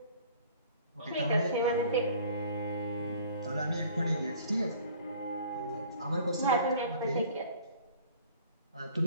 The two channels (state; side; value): inverted; both; correlation -0.51